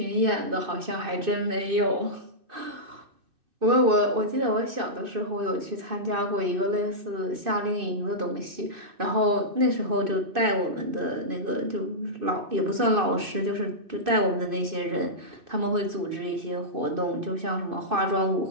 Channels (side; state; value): left; late; 2.6 ms